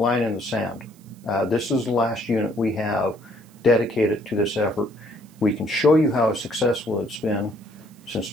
in the sand. This is the last unit we have dedicated to this effort. We can show you how successful it's been since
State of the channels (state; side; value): noise; right; hiss, 29 dB below the sound